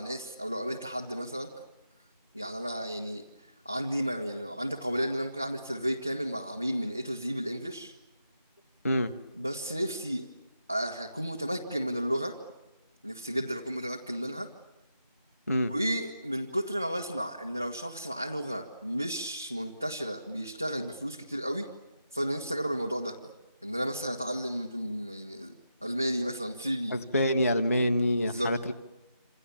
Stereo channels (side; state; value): both; inverted; correlation -0.86